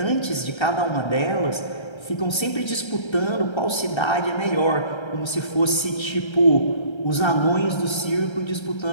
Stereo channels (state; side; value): late; right; 1.3 ms